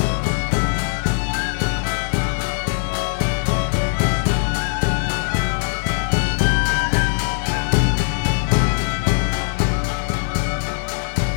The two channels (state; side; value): silent; right; 65 dB below the other